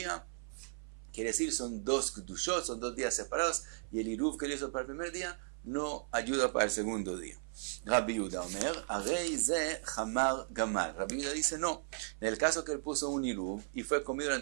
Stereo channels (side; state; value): left; silent; 54 dB below the other